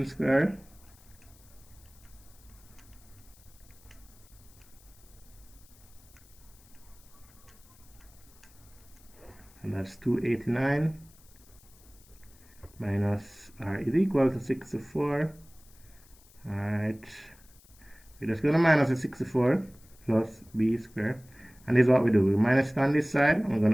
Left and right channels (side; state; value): left; noise; hiss, 26 dB below the sound